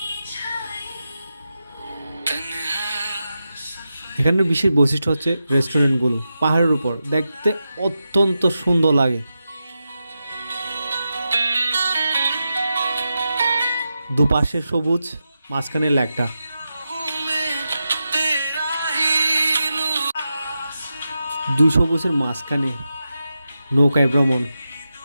এখানের বিশেষ বৈশিষ্ট্য হচ্ছে রেস্টুরেন্টগুলো পাহাড়ের উপর, দেখতে অত্যন্ত সুন্দর লাগে। দুপাশে সবুজ, মাঝখানে লেকটা। দুই সবুজের মাঝখানে নৌকায় ভ্রমণ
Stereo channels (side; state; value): both; inverted; correlation -0.90